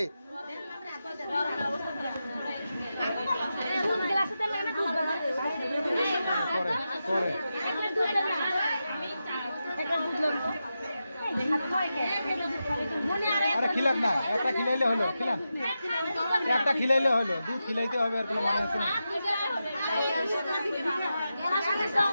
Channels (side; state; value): both; inverted; correlation -0.90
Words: আরে খিলান না, একটা খিলাইলে হলো, খিলান একটা খিলাইলে হলো, দুধ খিলাইতে হবে আর কোনো মানে আছে না।